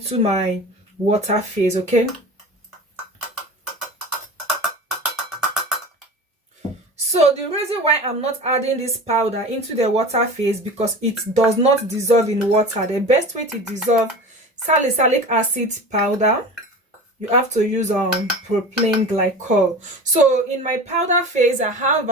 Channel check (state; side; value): normal; both; correlation 0.34